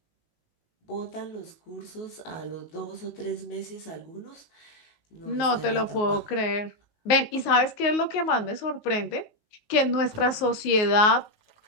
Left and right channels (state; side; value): late; right; 19 ms